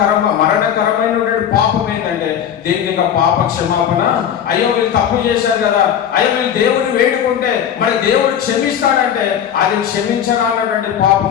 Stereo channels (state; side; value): quieter; right; 9.2 dB